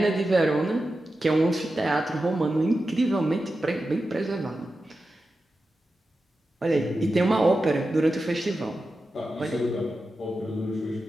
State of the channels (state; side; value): normal; both; correlation 0.91